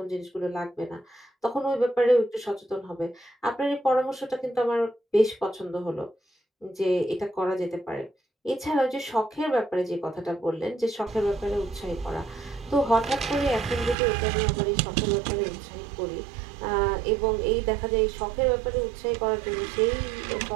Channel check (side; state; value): left; drops out; at 14.0 s